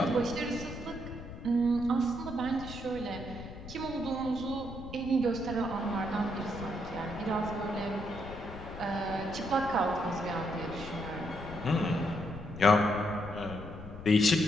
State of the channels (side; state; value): left; noise; rumble, 12 dB below the sound